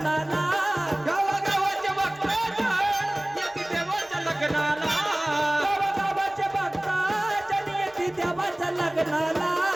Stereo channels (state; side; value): noise; right; rumble, 29 dB below the sound